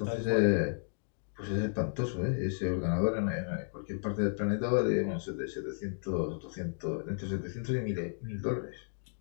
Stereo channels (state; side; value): silent; right; digital silence